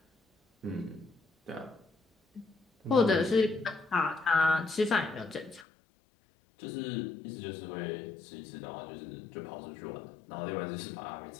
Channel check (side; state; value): right; drops out; at 5.7 s